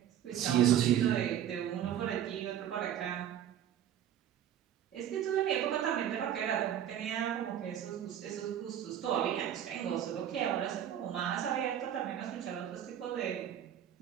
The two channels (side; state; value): left; quieter; 10.4 dB